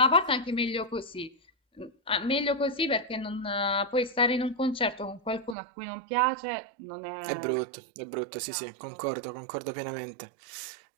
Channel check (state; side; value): drops out; left; at 5.6 s